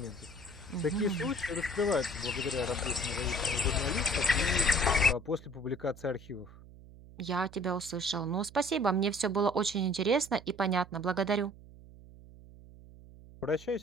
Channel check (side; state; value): right; noise; hum, 20 dB below the sound